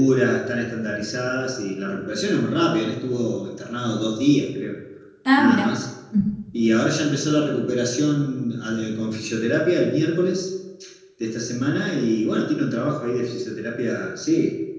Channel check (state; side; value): identical; both; correlation 1.00